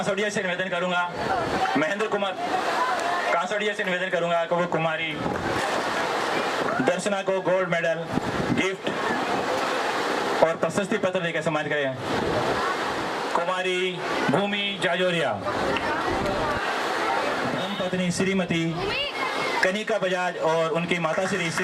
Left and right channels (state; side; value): identical; both; correlation 1.00